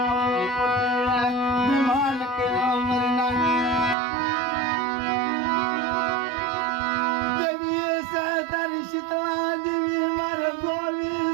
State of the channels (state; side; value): drops out; left; at 4.0 s